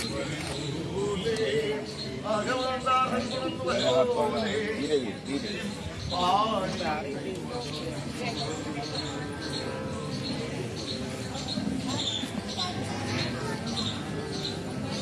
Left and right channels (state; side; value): identical; both; correlation 1.00